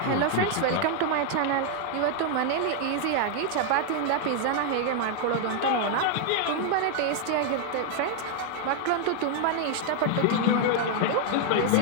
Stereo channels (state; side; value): different; both; correlation 0.00